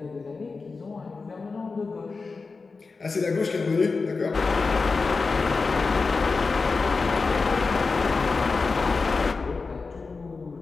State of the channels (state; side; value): quieter; right; 4.3 dB